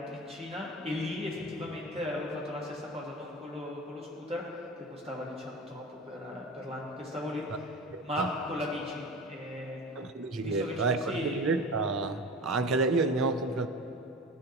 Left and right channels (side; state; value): both; normal; correlation 0.32